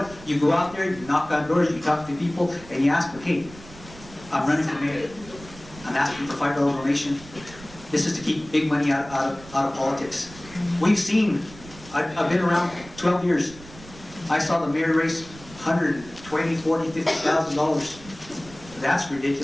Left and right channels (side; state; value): right; noise; rumble, 19 dB below the sound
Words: You go out there, you knock on doors, you talk to people, and you ask them, hey, I'm running for mayor. I'm asking for $5 donation. This is to keep big money out of politics. We've seen, I've been around 12 years. I saw the mayor raise $120,000, $40,000, $50,000. That's